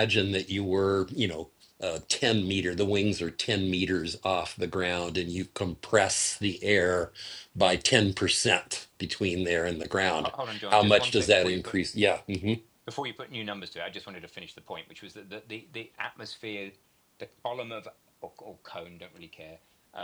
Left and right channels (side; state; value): both; identical; correlation 1.00